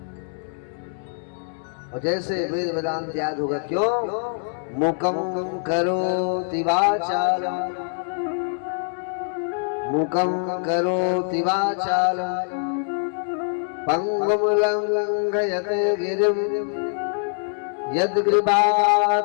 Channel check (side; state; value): right; silent; digital silence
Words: और जैसे वेद वेदांत याद होगा, क्यों? मुकम करोति वाचालम, मुकम करोति वाचालम, पंगुम लंघयते गिरिम,